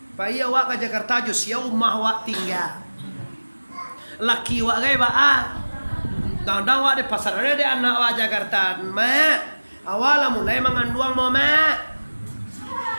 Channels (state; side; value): inverted; both; correlation -1.00